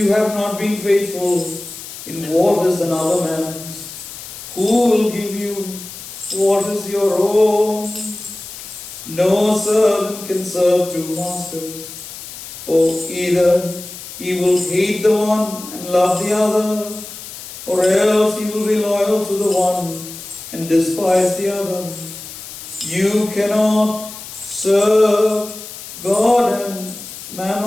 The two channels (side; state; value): left; noise; hiss, 13 dB below the sound